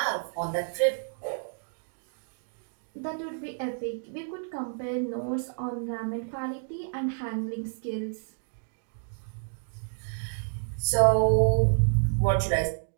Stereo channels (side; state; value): left; silent; digital silence